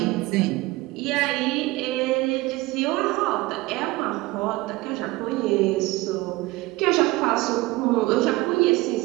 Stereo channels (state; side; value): quieter; left; 20.3 dB